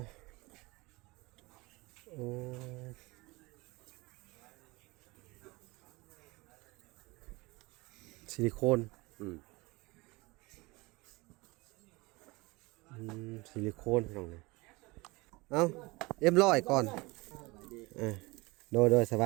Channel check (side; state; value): left; quieter; 24.0 dB